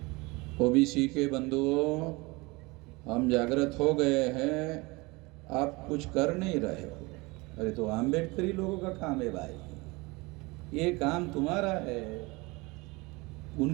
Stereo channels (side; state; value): left; quieter; 24.6 dB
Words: ओबीसी के बंधुओं, हम जागृत हो गए हैं, आप कुछ कर नहीं रहे हो। अरे तो अंबेडकरी लोगों का काम है भाई, ये काम तुम्हारा है,